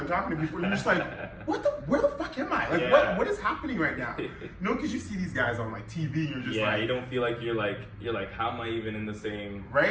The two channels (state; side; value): identical; both; correlation 1.00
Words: talking to people. You're just like, where the fuck am I? Like, what is happening right now? No, because you see these guys on like TV. You're just like, you don't feel like you're like, how am I even in the same?